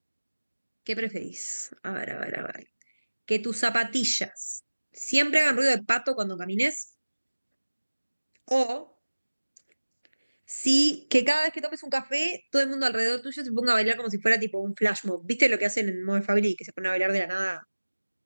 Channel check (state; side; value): inverted; both; correlation -1.00